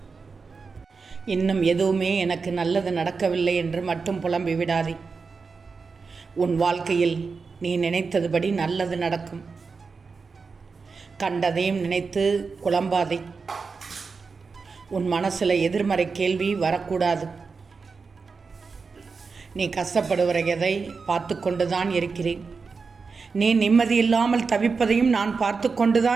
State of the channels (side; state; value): left; quieter; 4.8 dB